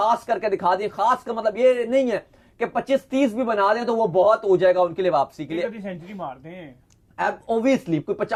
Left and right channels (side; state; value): both; identical; correlation 1.00